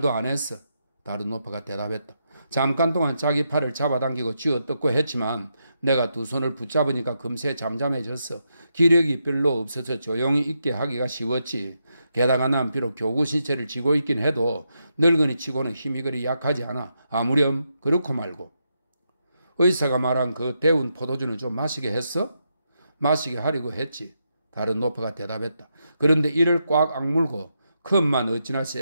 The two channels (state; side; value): inverted; both; correlation -0.83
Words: 안 했어. 다른 노파가 대답했다. 잠깐 동안 자기 팔을 잡아당기고 쥐어뜯고 했지만 내가 두 손을 붙잡으니까 금세 잠잠해졌어. 기력이 별로 없어서 조용히 있게 하기가 쉬웠지. 게다가 난 비록 교구 시체를 쥐고 있긴 해도 늙은이 치고는 힘이 그리 약하지 않아. 아무렴 그렇고 말고. 의사가 말한 그 데운 포도주는 좀 마시게 했어? 마시게 하려고 했지. 다른 노파가 대답했다. 그런데 이를 꽉 악물고 컵만 어찌나